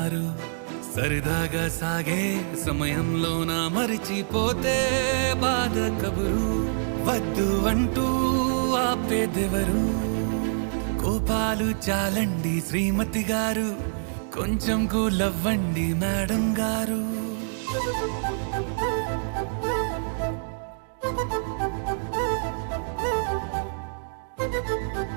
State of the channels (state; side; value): silent; left; digital silence